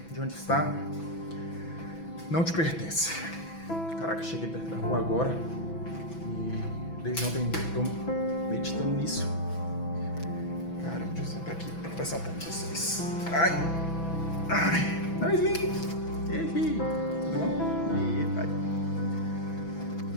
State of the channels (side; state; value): right; late; 6.0 ms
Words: de onde está não te pertence. Caraca, cheguei perto da rua agora e desde ontem estou meditando nisso. Caramba, deixa eu sentar aqui para conversar um pouco com vocês. Ai, não, Slim. Tudo bom? Ai.